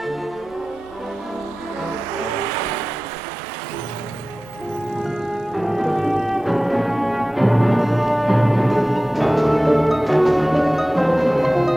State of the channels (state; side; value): normal; both; correlation 0.96